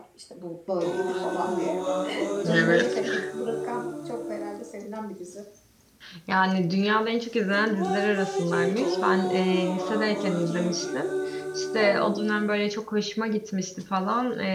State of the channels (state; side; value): identical; both; correlation 1.00